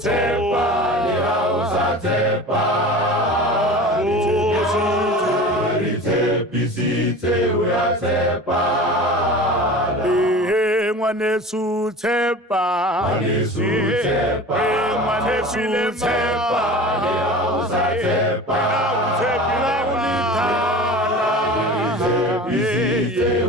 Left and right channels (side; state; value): both; normal; correlation 0.36